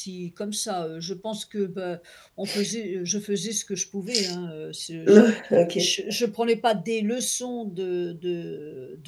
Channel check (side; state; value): both; identical; correlation 1.00